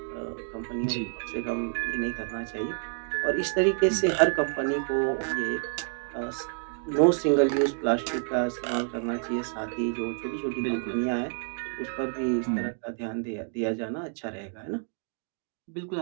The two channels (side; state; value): left; silent; 57 dB below the other